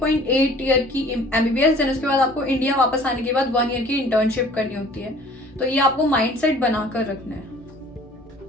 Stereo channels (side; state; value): both; normal; correlation 0.50